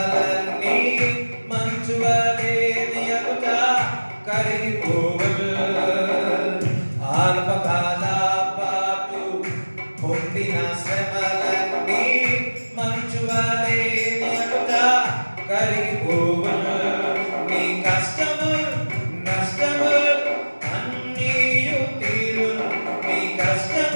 మంచువలే నియముట కరిగిపోవలు అల్పకాల పాటు పొందిన శ్రమలన్నీ మంచువలే నియముట కరిగిపోవలు నీ కష్టము నష్టము అన్నీయు తీరును నీ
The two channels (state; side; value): inverted; both; correlation -1.00